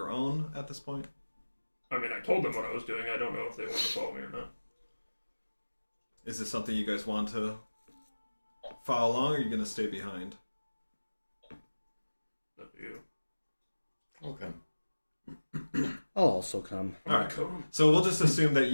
own at this point? I mean, I told them what I was doing. I don't know if they want to follow me or not. Is this something you guys want to follow along, or are you going to stay behind? Up to you. Okay. I'll also come. Alright, so we'll just assume that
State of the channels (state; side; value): inverted; both; correlation -1.00